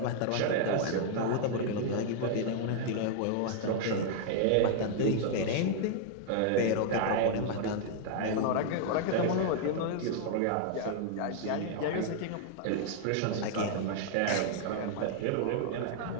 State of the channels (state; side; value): different; both; correlation -0.01